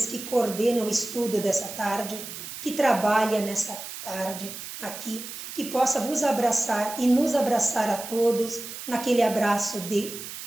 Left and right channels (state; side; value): noise; right; hiss, 10 dB below the sound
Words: que coordenam o estudo dessa tarde, que trabalha nessa tarde aqui, que possa vos abraçar e nos abraçar a todos naquele abraço de